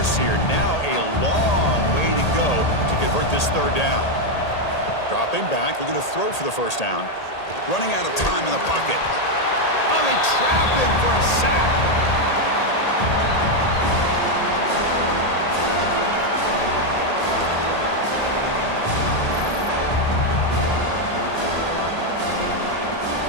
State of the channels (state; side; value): late; right; 1.8 ms